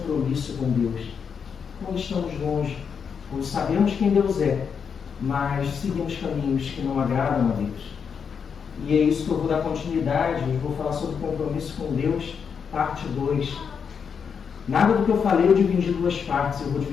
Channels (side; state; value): right; quieter; 6.6 dB